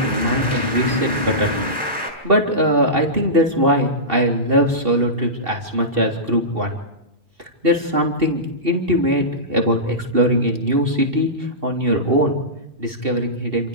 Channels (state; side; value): late; left; 2.7 ms